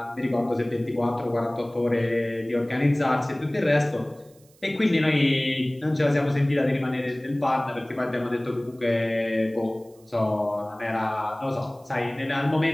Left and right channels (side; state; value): right; noise; hiss, 30 dB below the sound